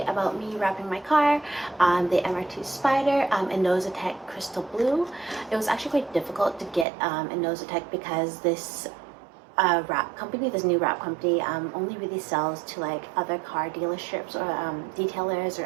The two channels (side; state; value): left; drops out; at 6.9 s